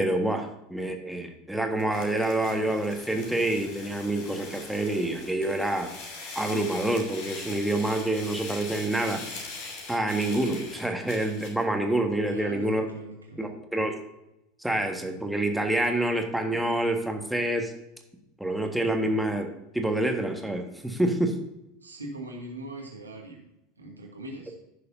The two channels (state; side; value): normal; both; correlation 0.70